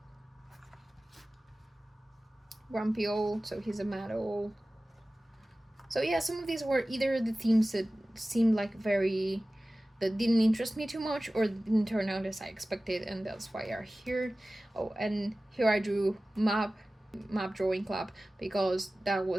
Grumpy old, so he's a mad old. So yeah, some of these were either the themes that seemed like that didn't interest me too much, or didn't turn out as I expected, and that's why are here. Oh, and here I drew map drawing club, because that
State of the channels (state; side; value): normal; both; correlation 0.97